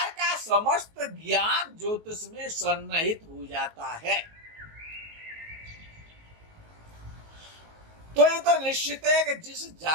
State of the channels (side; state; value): left; late; 19 ms